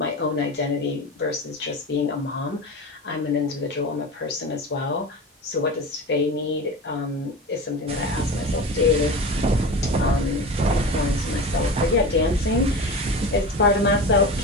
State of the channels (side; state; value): both; normal; correlation 0.28